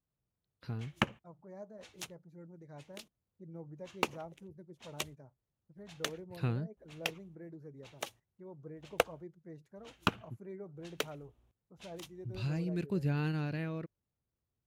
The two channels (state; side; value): identical; both; correlation 1.00